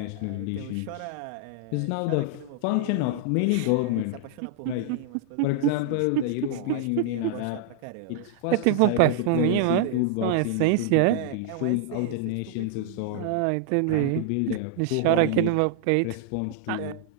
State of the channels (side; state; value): both; different; correlation -0.01